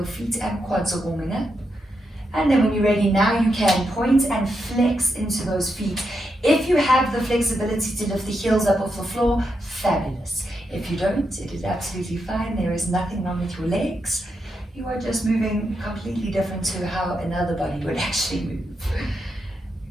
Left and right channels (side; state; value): both; normal; correlation 0.84